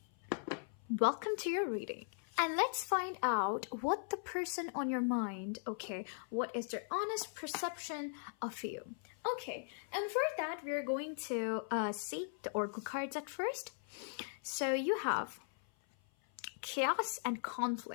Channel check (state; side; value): silent; right; 52 dB below the other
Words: welcome to your reading. And let's find out what the person on your mind, okay, what is their honest perception of you. Okay, and for that, we're going to see the oracle cards at first. So you have chaos and